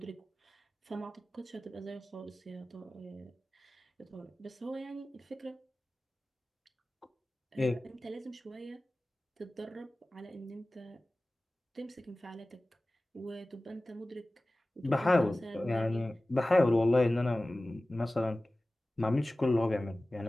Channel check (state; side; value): normal; both; correlation 0.97